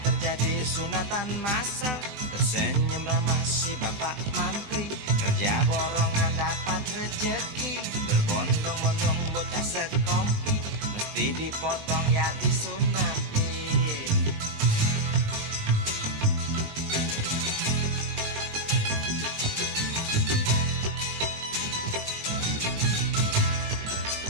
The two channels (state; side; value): late; left; 20 ms